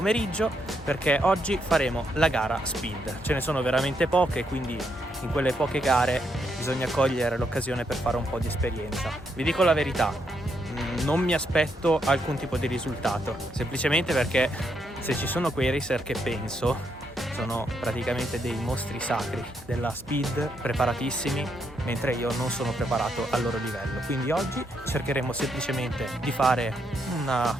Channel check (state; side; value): normal; both; correlation 0.78